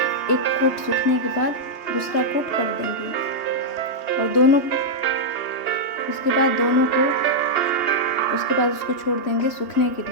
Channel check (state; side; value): late; right; 3.1 ms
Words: कोट सूखने के बाद दूसरा कोट कर देंगे, और उसके बाद उसको छोड़ देंगे सूखने के